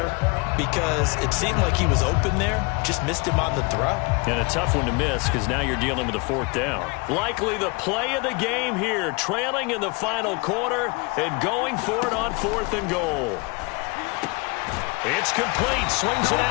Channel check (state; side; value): quieter; right; 28.1 dB